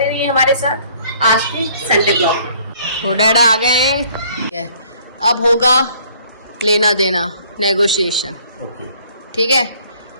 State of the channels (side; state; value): both; inverted; correlation -0.58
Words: रहिए हमारे साथ आज के संडे ब्लॉग में। तो डैडा आ गए हैं, अब होगा लेना देना, नेगोशिएशन। ओके ठीक है,